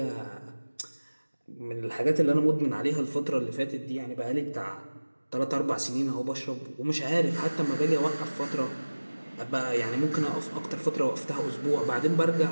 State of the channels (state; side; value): inverted; both; correlation -1.00